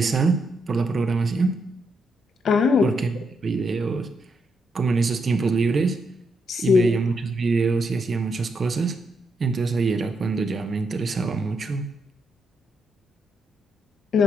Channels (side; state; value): both; normal; correlation 0.79